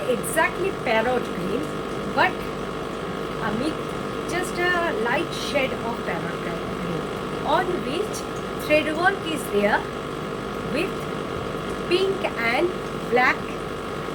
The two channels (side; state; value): both; identical; correlation 1.00